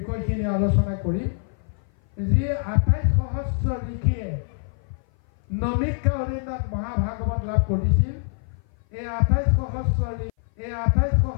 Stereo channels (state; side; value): silent; right; 57 dB below the other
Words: আলোচনা কৰিম। যি 28 সহস্ৰ ঋষিয়ে নমিক্ষা অৰণ্যত মহাভাগৱত লাভ কৰিছিল, এই 28